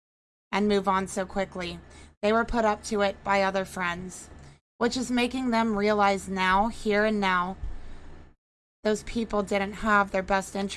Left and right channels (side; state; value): both; identical; correlation 1.00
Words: and move on so quickly. They were put up to it by other friends, which is making them realize now, here and now, those people didn't have their best